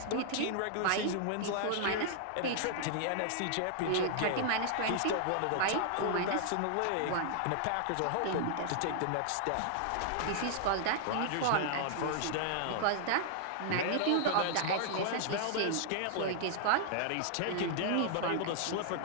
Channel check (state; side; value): different; both; correlation -0.01